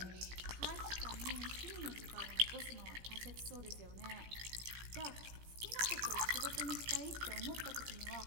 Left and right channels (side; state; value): left; late; 17 ms